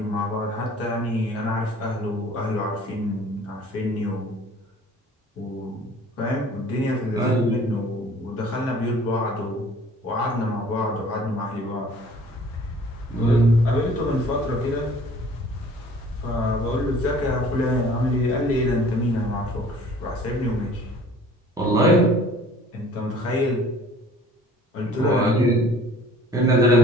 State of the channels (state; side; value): normal; both; correlation 0.51